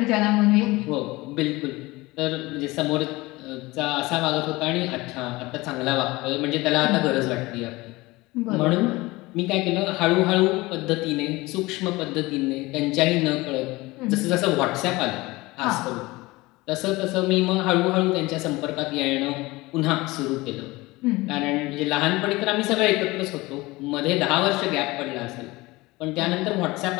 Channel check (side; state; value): right; quieter; 21.3 dB